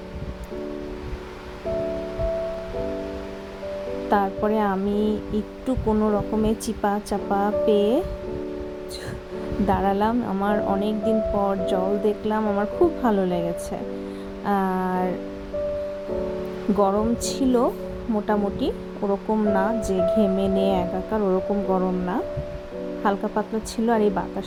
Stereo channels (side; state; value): both; identical; correlation 1.00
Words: তারপরে আমি একটু কোনো রকমে চিপা চাপা পেয়ে দাঁড়ালাম। আমার অনেক দিন পর জল দেখলাম, আমার খুব ভালো লেগেছে। আর গরম ছিল মোটামুটি, ওরকম না যে ঘেমে নিয়ে একাকার, ওরকম গরম না, হালকা পাতলা ছিল। আর এই